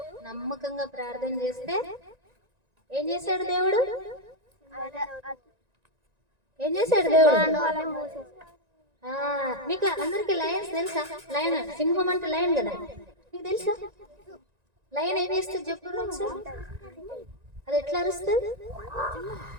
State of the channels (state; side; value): late; left; 1.9 ms